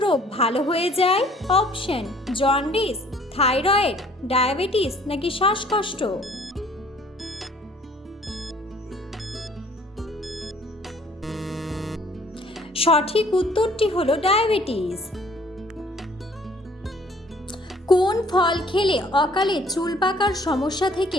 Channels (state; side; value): normal; both; correlation 0.57